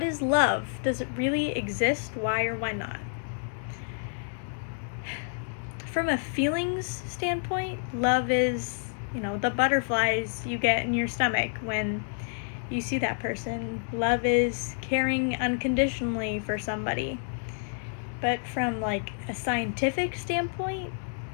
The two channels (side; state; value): right; silent; digital silence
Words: is love? Does it really exist? Why or why not? From a feelings standpoint, love is, the butterflies you get in your stomach when you see that person. Love is caring unconditionally for somebody. But from like a scientific standpoint,